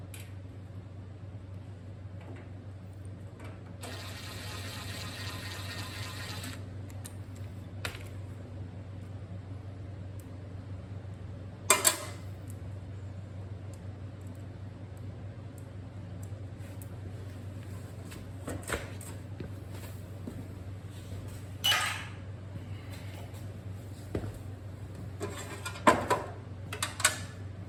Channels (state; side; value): identical; both; correlation 1.00